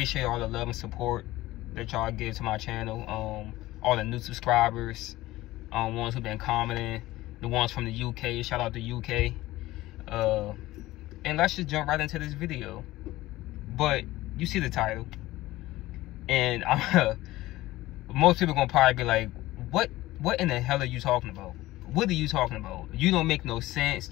all the love and support that y'all give to my channel. All the new subscribers, ones who've been commenting, the ones from the UK. Shout out to UK. And let's just jump right into this video. But you see the title, and most people gonna probably be like, "What in the hell are you talking about? What are you talking about? You don't make no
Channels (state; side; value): quieter; right; 17.4 dB